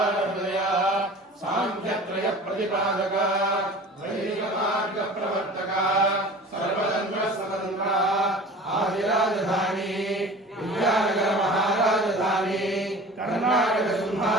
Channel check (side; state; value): both; normal; correlation 0.41